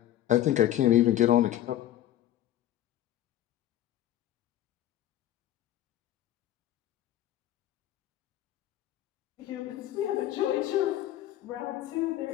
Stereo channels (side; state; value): right; quieter; 13.0 dB